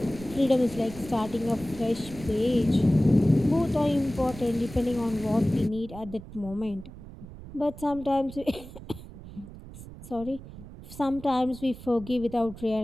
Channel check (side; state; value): right; noise; rumble, 15 dB below the sound